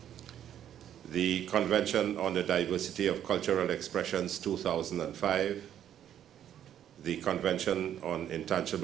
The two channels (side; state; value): left; quieter; 10.3 dB